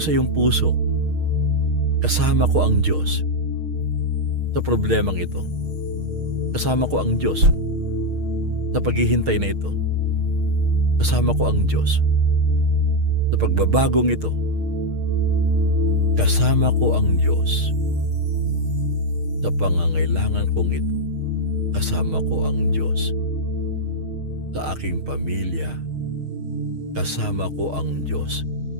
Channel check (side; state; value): left; late; 6.5 ms